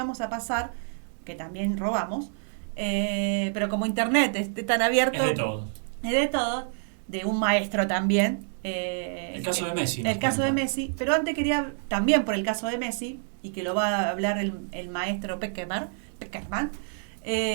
a pasar, que también robamos, pero como internet es tan abierto... Es de todo. Es de todo, de un maestro también. El caso de Messi. El caso de Messi, pero antes quería, también por el caso de Messi, y que lo va a hablar el maestro Peckerman, que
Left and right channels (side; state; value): left; silent; digital silence